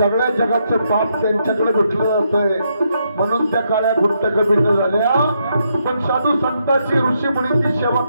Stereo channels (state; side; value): inverted; both; correlation -0.78